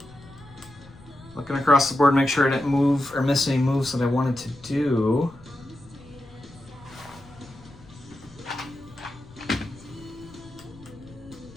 Looking across the board, make sure I didn't move or miss any moves that I wanted to do.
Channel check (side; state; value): left; noise; rumble, 21 dB below the sound